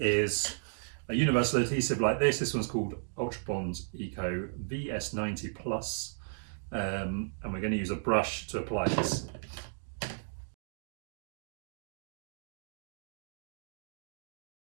a universal adhesive like this. This one's called Ultra Bond Eco VS90 Plus, and we're going to use a brush to apply this.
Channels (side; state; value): left; silent; digital silence